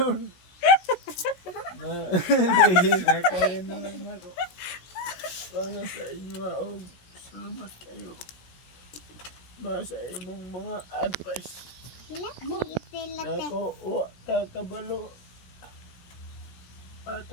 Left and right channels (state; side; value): late; right; 17 ms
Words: Na kaya na lang ako. Para sa inyo og salamat kayo. Ba sa imong mga advice. Ako, kabalo.